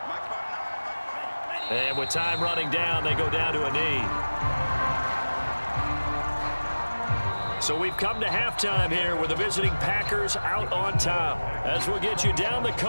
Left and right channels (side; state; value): both; inverted; correlation -1.00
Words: And with time running down, they go down to a knee. So we've come to halftime here with the visiting Packers out on top. As we'll get you down the